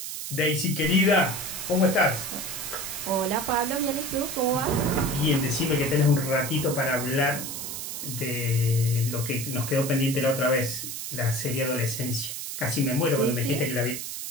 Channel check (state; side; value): noise; right; hiss, 6 dB below the sound